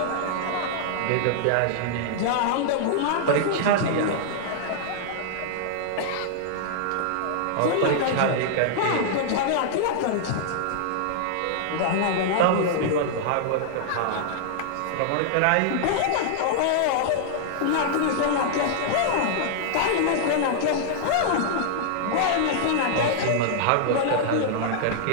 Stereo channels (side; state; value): both; different; correlation -0.01